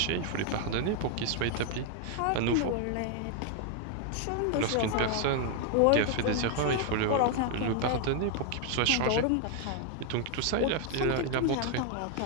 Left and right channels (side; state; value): both; different; correlation 0.00